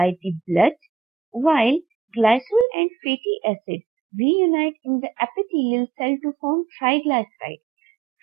the blood, while glycerol and fatty acids reunite in the epithelial cell to form triglyceride.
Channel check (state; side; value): drops out; left; at 2.7 s